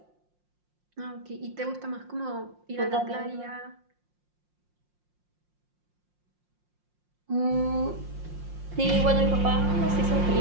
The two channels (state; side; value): late; left; 5.6 ms